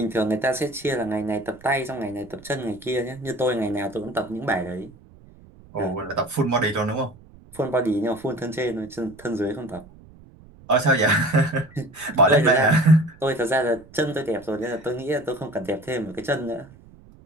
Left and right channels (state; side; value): noise; right; rumble, 23 dB below the sound